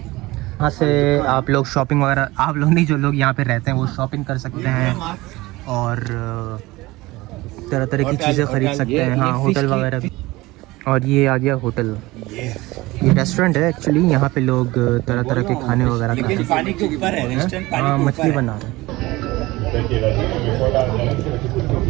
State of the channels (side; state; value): left; quieter; 20.1 dB